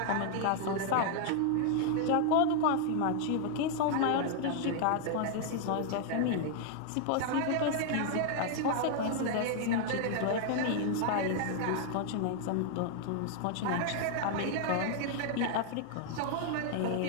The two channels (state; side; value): different; both; correlation 0.00